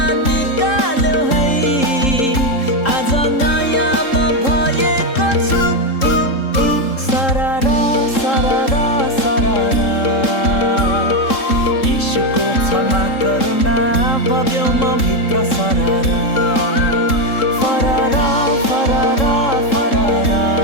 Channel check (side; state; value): right; late; 3.7 ms